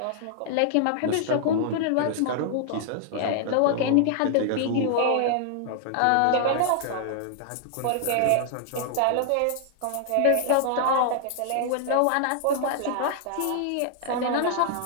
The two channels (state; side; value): different; both; correlation -0.01